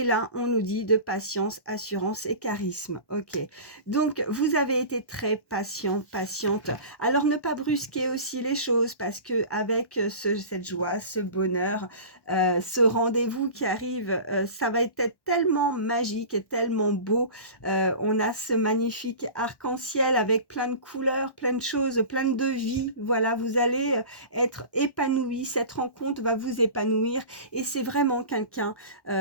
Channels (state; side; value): late; right; 1.1 ms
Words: là, on nous dit de patience, assurance et charisme. Ok. Donc, vous avez été très patient, patiente. Alors, ne pas brusquer aussi les choses parce que avec cette joie, ce bonheur, ce rendez-vous qui arrive, ça va être tellement magique et tellement beau. On a ce magnifique arc-en-ciel avec plein de couleurs, plein de choses, plein de vie. Voilà, vous allez être épanoui. Cette rencontre va vous épanouir et c'est vraiment quelqu'un